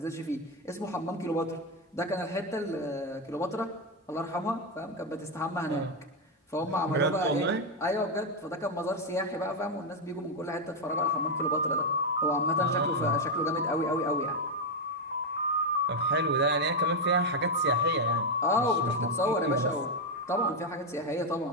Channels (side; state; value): both; normal; correlation 0.04